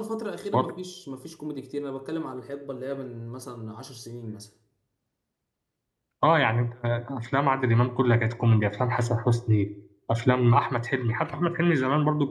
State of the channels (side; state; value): both; identical; correlation 1.00